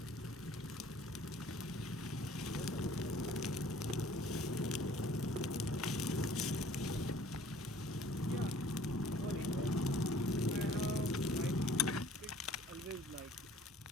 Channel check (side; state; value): both; normal; correlation 0.54